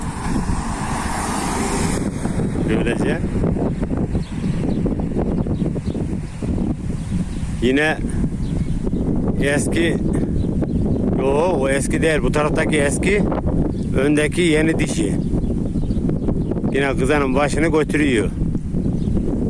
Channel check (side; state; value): both; identical; correlation 1.00